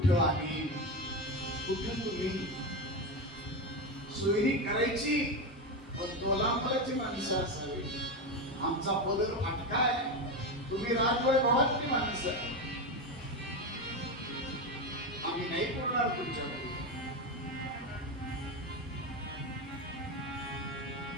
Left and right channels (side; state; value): both; normal; correlation 0.16